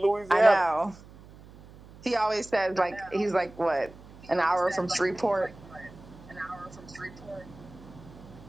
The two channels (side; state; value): right; noise; hum, 20 dB below the sound